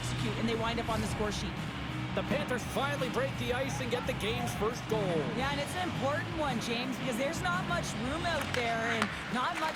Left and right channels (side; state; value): both; identical; correlation 1.00